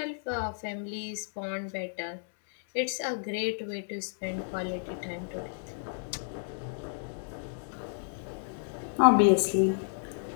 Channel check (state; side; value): silent; right; digital silence